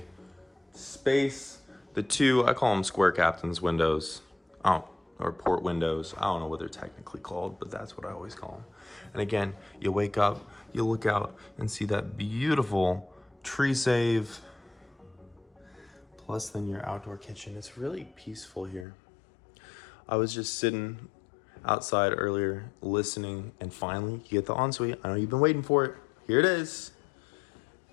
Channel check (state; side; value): drops out; right; at 18.9 s